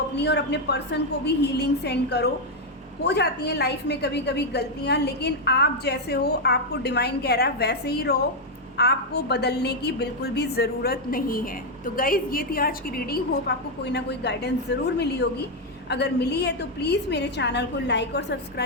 और अपने पर्सन को भी हीलिंग सेंड करो। हो जाती हैं लाइफ में कभी कभी गलतियां, लेकिन आप जैसे हो, आपको डिवाइन कह रहा है वैसे ही रहो, आपको बदलने की बिल्कुल भी ज़रूरत नहीं है। तो गाइज़, ये थी आज की रीडिंग। होप आपको कोई ना कोई गाइडेंस ज़रूर मिली होगी। अगर मिली है तो प्लीज़ मेरे चैनल को लाइक और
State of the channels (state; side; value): normal; both; correlation 0.01